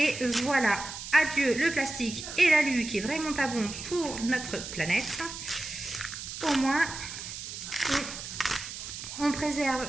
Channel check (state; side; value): noise; right; hiss, 9 dB below the sound